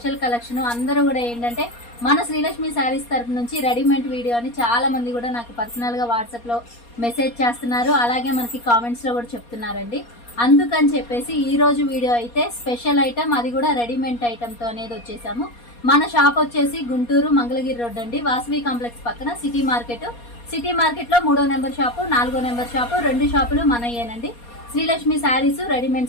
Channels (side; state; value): right; late; 4.2 ms